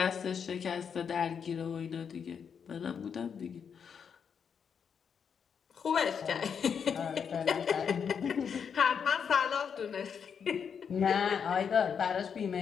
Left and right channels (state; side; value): quieter; right; 7.0 dB